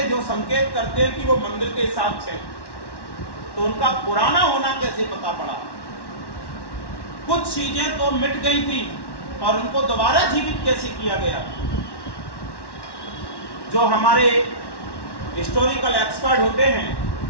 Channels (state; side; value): late; right; 1.1 ms